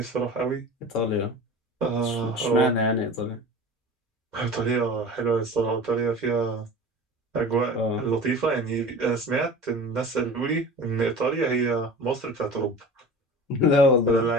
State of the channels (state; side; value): normal; both; correlation 0.37